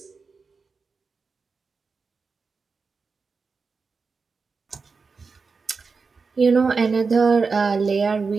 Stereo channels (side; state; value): left; quieter; 4.7 dB